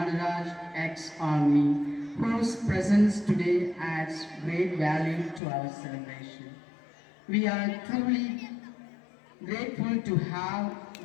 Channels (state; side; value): drops out; right; at 5.4 s